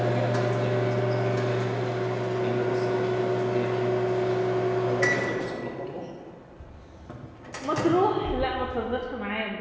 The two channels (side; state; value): both; identical; correlation 1.00